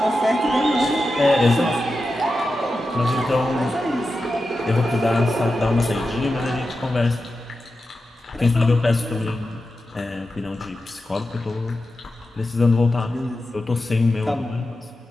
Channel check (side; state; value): both; normal; correlation 0.91